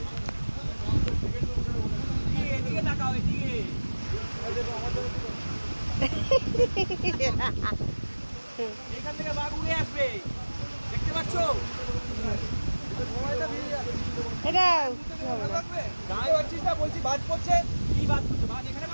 এদিকে তাকাও, এদিকে। এখান থেকে বাঘ উড়ে আসবে, দেখতে পাচ্ছ? এটা গায়ে হচ্ছিস না, বলছি বাজ পড়ছে। কি বাজ পড়ছে? বাজ এখানে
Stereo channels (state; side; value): inverted; both; correlation -1.00